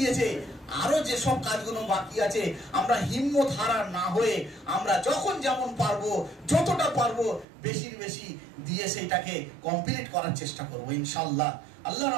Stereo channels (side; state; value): left; drops out; at 7.5 s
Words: আরো যে সব কাজগুলো বাকি আছে আমরা হিম্মত হারা না হয়ে আমরা যখন যেমন পারবো, যতটা পারবো বেশির বেশি দিয়ে সেইটাকে কমপ্লিট করার চেষ্টা করব ইনশাআল্লাহ। আল্লাহ